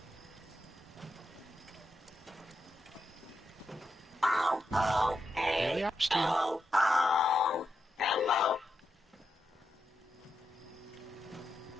Daily Ops team. Hello.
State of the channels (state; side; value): normal; both; correlation 0.86